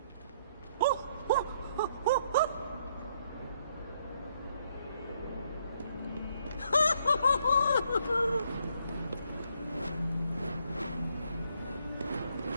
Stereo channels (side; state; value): both; inverted; correlation -0.71